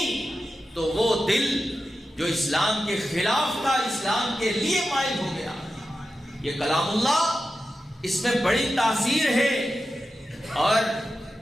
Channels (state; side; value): normal; both; correlation 0.91